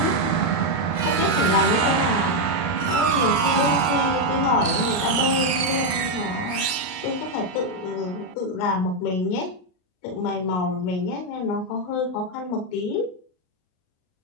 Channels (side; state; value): right; late; 38 ms